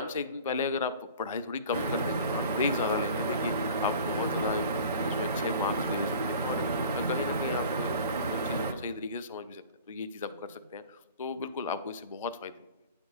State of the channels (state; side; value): inverted; both; correlation -0.42